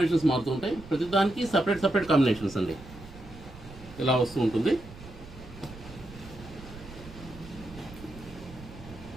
మారుతుంటాయి. ప్రతి దానికి సపరేట్ కాంబినేషన్స్ అండి. ఇలా వస్తూ ఉంటుంది.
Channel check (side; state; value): right; noise; rumble, 17 dB below the sound